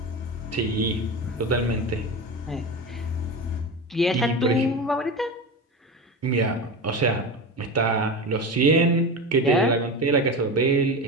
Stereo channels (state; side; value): normal; both; correlation 0.24